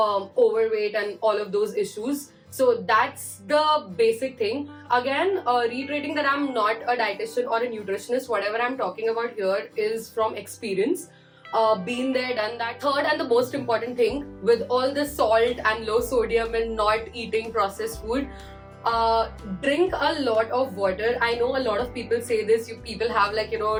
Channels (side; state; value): both; identical; correlation 1.00